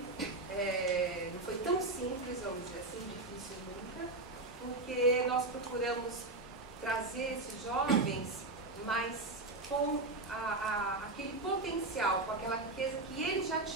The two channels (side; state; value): left; quieter; 3.0 dB